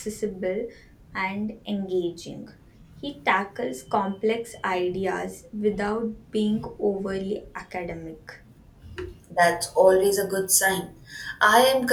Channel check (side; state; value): both; identical; correlation 1.00